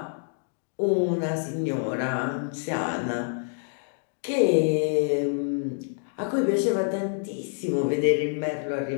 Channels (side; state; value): right; silent; digital silence